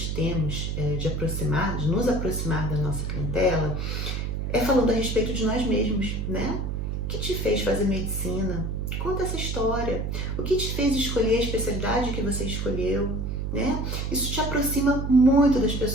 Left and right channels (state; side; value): noise; right; hum, 2 dB below the sound